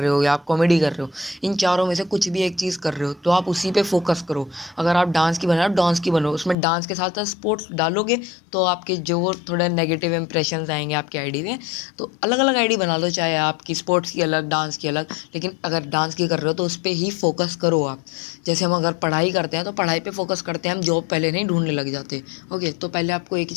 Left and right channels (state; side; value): drops out; right; at 6.6 s